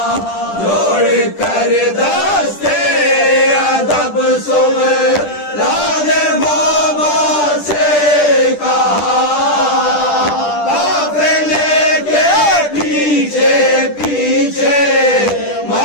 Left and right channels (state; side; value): late; right; 10 ms